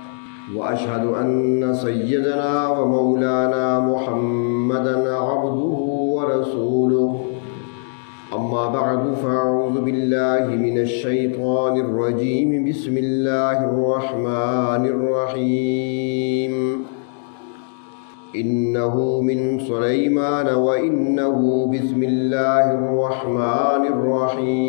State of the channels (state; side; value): silent; right; digital silence